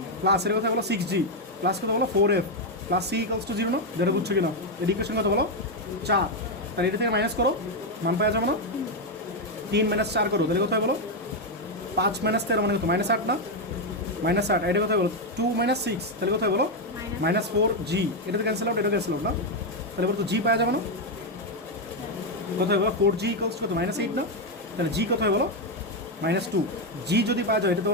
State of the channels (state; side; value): normal; both; correlation 0.04